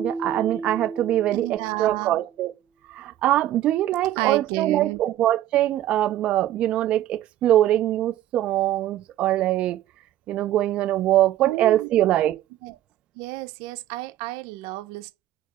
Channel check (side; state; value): left; quieter; 13.0 dB